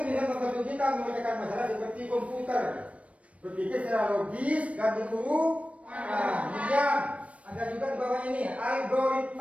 bisa membantu kita memecahkan masalah seperti komputer. Berpikir secara logis dan berurutan. Kemudian ada juga di bawah ini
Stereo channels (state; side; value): late; left; 0.064 ms